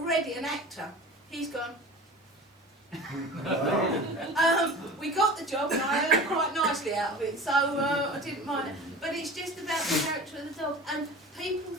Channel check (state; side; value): normal; both; correlation 0.37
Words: an actor. He's gone. We got the job, and I earned quite nicely out of it, so I didn't mind it. But it's just about the character of the dog, and people